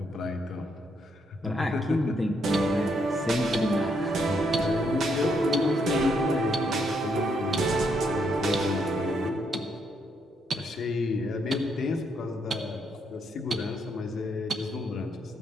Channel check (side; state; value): both; normal; correlation 0.75